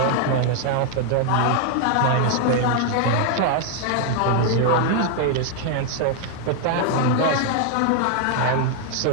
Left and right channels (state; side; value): different; both; correlation 0.00